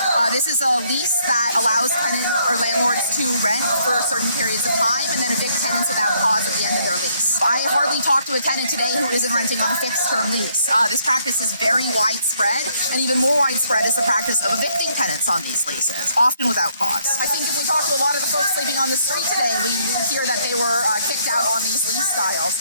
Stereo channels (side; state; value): both; inverted; correlation -0.69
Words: This is a lease that allows tenants or landlords to rent for certain periods of time and then evict tenants without cause at the end of their lease. I hardly talked to a tenant today who isn't renting on a fixed-term lease. This practice is very widespread, and even more widespread is the practice of evicting tenants on these leases, often without cause. I think if we talk to a lot of the folks living on the street today, we hear that they were kicked out on these lease styles,